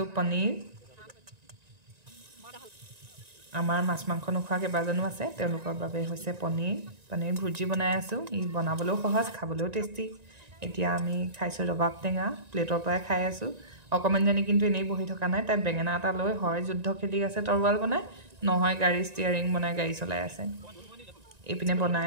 পনীৰ আমাৰ মাছ মাংস নোখোৱা কেইবাজনো আছে তেওঁলোকৰ বাবে হৈছে পনীৰ ভুজি বনাই আছো ই বনাবলৈও সহজ খাবলৈও টেষ্টি এতিয়া আমি খাইছো ৰবাব টেঙা প্লেটৰ পৰাই খাই আছো অকমানজনী কিন্তু এনেই বহি থকা নাই তাই বেঙেনা এটা লৈ হয় যুদ্ধ খেলি আছে তৰৱাল বনাই নহয় গাড়ী ষ্টিয়াৰিং বনাই গাড়ী চলাই আছে এপিনে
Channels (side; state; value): left; late; 1.9 ms